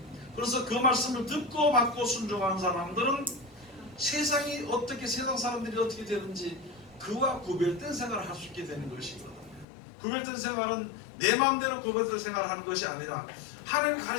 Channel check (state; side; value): drops out; right; at 9.7 s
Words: 그래서 그 말씀을 듣고 받고 순종한 사람들은 세상이 어떻게, 세상 사람들이 어떻게 되는지 그와 구별된 생활을 할 수 있게 되는 것이거든요. 구별된 생활은 내 마음대로 구별된 생활을 하는 것이 아니라 하나님이